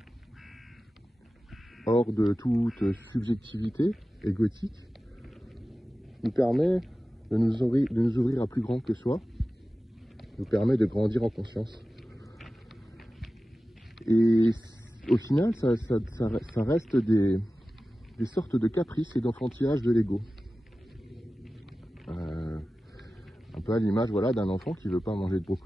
hors de toute subjectivité égotique, nous permet de nous ouvrir à plus grand que soi, nous permet de grandir en conscience. Et au final, ça reste des sortes de caprices et d'enfantillage de l'ego. Un peu à l'image d'un enfant qui ne veut pas manger de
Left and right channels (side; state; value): both; normal; correlation 0.95